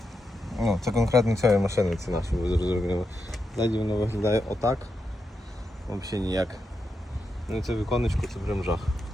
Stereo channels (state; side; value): normal; both; correlation 0.86